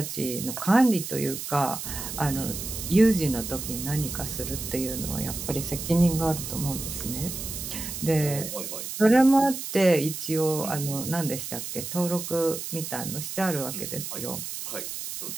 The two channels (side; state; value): right; noise; hiss, 7 dB below the sound